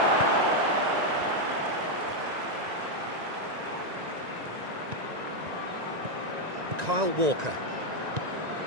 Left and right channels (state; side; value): late; left; 1.9 ms